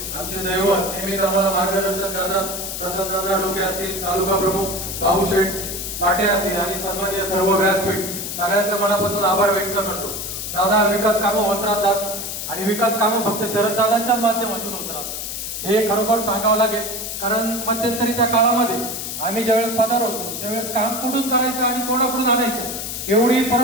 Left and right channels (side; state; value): left; noise; hiss, 5 dB below the sound